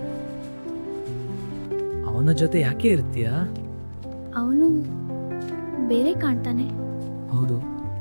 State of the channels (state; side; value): inverted; both; correlation -1.00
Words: ಅವನ ಜೊತೆ ಯಾಕೆ ಇರ್ತೀಯಾ? ಅವನು ಬೇರೆ ಕಾಣ್ತಾನೆ. ಹೌದು.